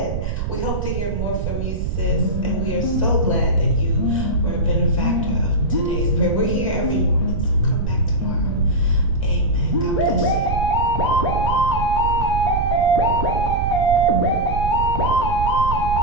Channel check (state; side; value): noise; right; rumble, 3 dB below the sound